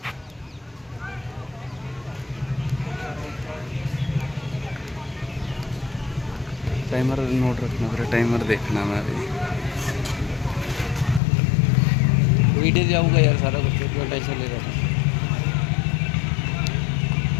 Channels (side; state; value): right; drops out; at 11.2 s